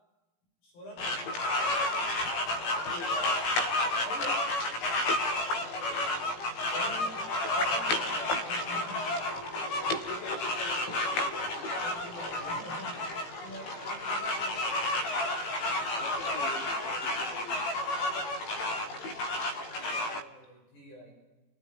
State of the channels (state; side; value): late; right; 18 ms